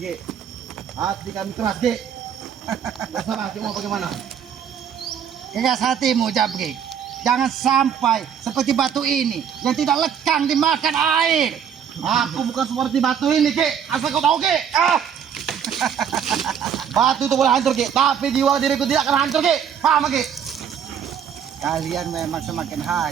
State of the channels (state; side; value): quieter; left; 8.2 dB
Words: Hati kami keras, Ki. Terserah, Ki, mau bagaimana? Keras hatimu, Jabrik. Jangan sampai seperti batu ini yang tidak lekang dimakan air. Aku bukan seperti batu ini, Ki. Asal kau tahu, Ki. Batu itu boleh hancur, Ki. Tapi jiwa diriku tidak akan hancur, Ki. Paham, Ki? Kalian memang semakin